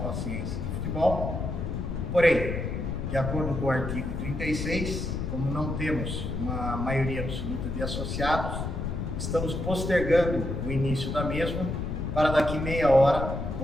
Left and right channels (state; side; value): noise; left; rumble, 3 dB below the sound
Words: de Futebol. Porém, de acordo com o artigo 36, como não temos uma maioria absoluta de associados, estamos postergando o início da mesma para daqui meia hora,